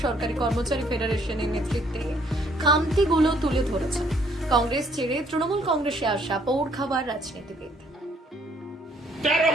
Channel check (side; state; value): both; normal; correlation 0.65